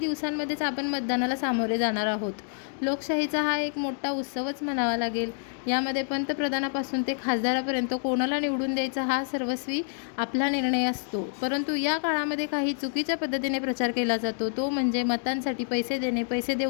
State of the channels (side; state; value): right; silent; digital silence